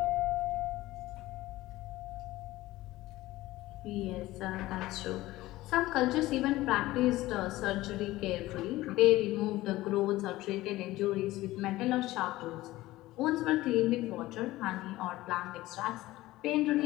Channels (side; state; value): right; quieter; 17.4 dB